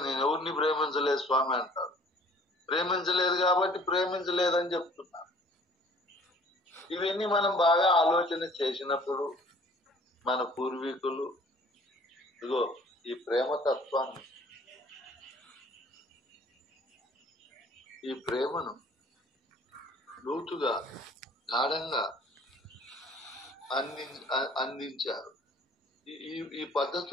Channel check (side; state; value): both; normal; correlation 0.53